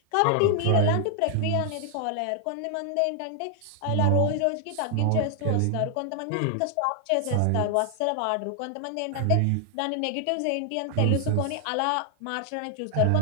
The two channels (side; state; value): both; different; correlation 0.00